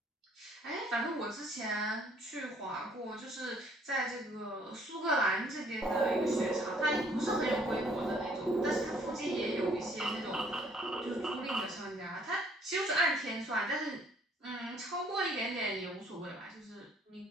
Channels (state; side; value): normal; both; correlation 0.61